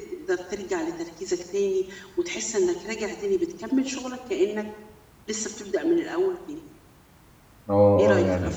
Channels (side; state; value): both; identical; correlation 1.00